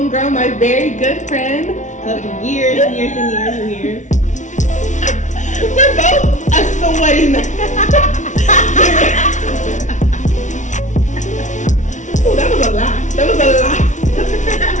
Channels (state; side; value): late; right; 0.36 ms